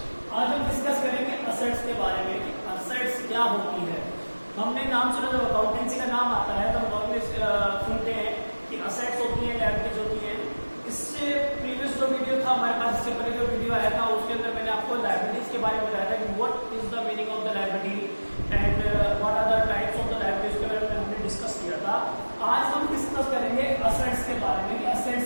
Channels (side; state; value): both; inverted; correlation -1.00